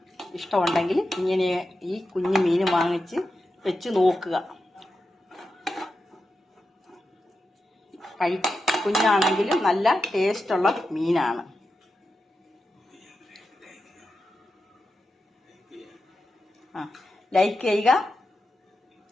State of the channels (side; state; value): both; normal; correlation 0.90